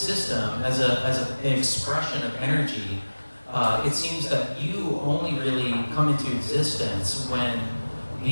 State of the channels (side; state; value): both; inverted; correlation -1.00